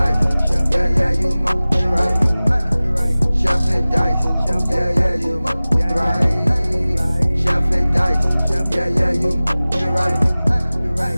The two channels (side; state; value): both; inverted; correlation -0.98